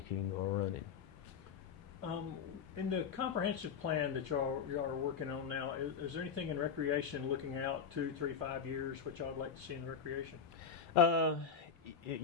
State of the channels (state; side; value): quieter; right; 6.5 dB